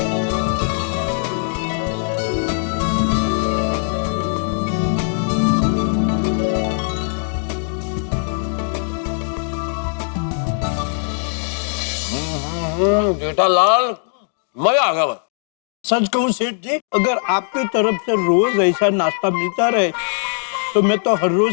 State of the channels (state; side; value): silent; right; 65 dB below the other